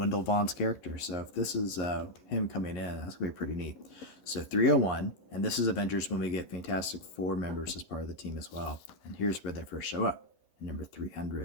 Vaughn's character. So if this is him coming in, that's going to be pretty neat. So 301, and this is Avengers when we get Fantastic Four members as part of the team as well. And here's where they first show up. Number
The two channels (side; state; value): right; late; 11 ms